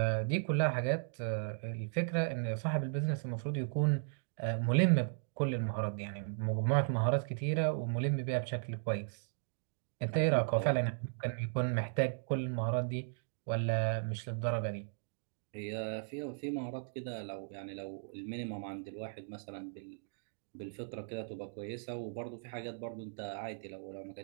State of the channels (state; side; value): silent; left; digital silence